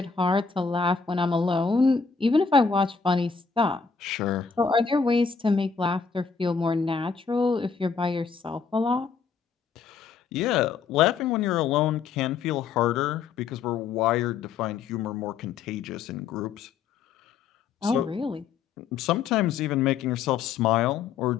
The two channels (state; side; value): quieter; right; 5.7 dB